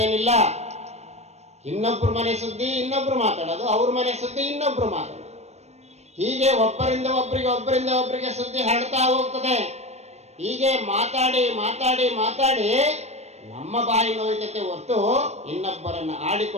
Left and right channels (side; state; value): left; late; 0.32 ms